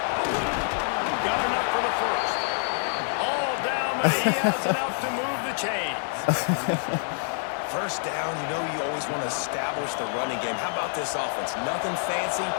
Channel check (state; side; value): silent; right; 60 dB below the other